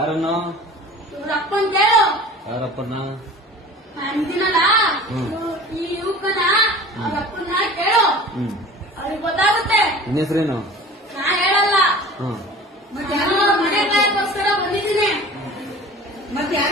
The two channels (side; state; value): both; normal; correlation 0.41